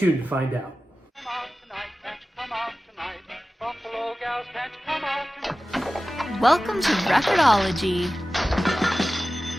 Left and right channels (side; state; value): both; normal; correlation 0.96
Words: to find out. Welcome to Record-ology.